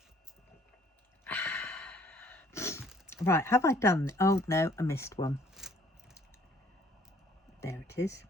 Right, have I done... Oh, no, I missed one. There it is.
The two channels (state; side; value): normal; both; correlation 0.59